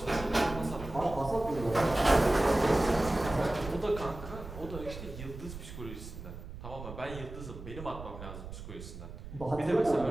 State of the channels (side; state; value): right; noise; rumble, 11 dB below the sound